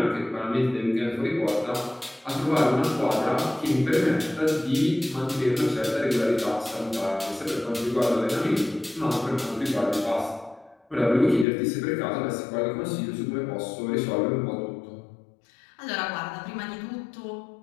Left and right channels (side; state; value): right; drops out; at 11.5 s